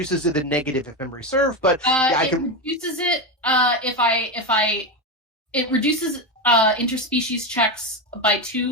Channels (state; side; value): normal; both; correlation 0.14